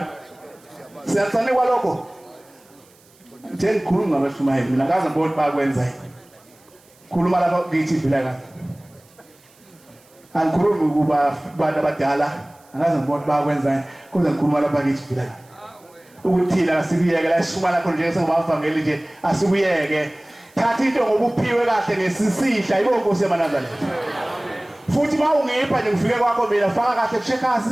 siyathane kwalokho nje ngikhuluma ngabashumayeli mina ngaze ngibone bakwenza khuluma lapha ngithi vila kahle angikhulumi kuba abantu abadala ngaze ngibone bakwenza kodwa ngikhuluma lapha ngithi vila ukuthi la sikuyeke la sishuma lapho nje singabavangeli nje asikuyeke thatha into ngokuphiwe kahle ngesisihla ibo Nkosi yaManazareth futhi mawungipha nje ngifike kwakho mina faka kahle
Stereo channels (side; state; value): right; noise; hiss, 30 dB below the sound